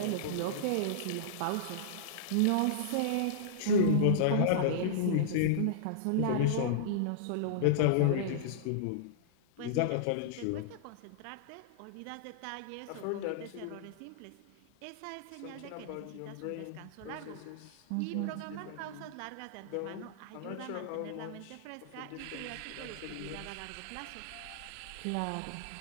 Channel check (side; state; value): both; different; correlation -0.02